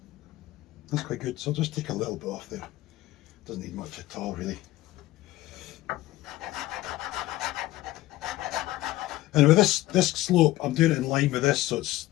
that's quite good, so I'll just take a little bit off there. Doesn't need much at all really. And with this slope, I'm doing it in line with this, so it's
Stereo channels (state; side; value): quieter; right; 16.8 dB